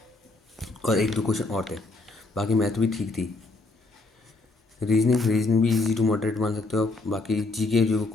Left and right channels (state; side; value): quieter; right; 3.3 dB